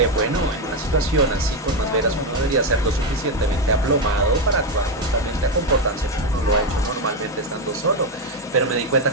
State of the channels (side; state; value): both; normal; correlation 0.08